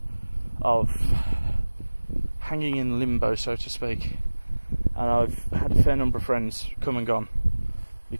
of hanging in limbo, so to speak. And I've had a fair number of friends come and gone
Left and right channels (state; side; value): inverted; both; correlation -1.00